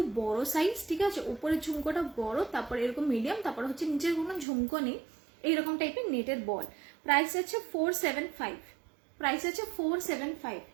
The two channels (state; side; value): drops out; left; at 4.5 s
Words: বড় সাইজ, ঠিক আছে। উপরের ঝুমকোটা বড়, তারপর এরকম মিডিয়াম, তারপর হচ্ছে নিচের কোনো ঝুমকো নেই, এইরকম টাইপের নেটের বল। প্রাইস আছে 475, প্রাইস আছে 475,